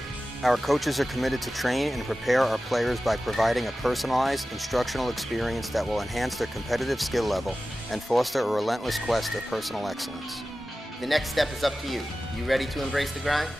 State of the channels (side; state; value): both; normal; correlation 0.95